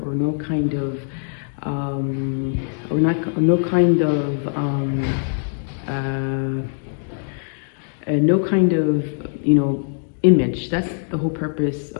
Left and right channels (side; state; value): right; silent; digital silence